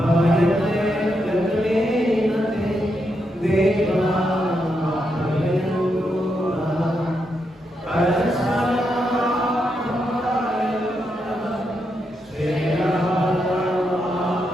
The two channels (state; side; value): normal; both; correlation 0.82